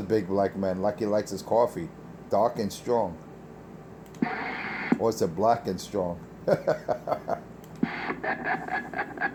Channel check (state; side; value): identical; both; correlation 1.00